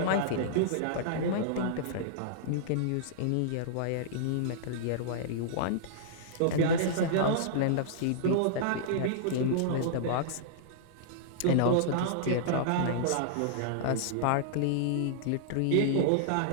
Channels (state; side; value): different; both; correlation -0.02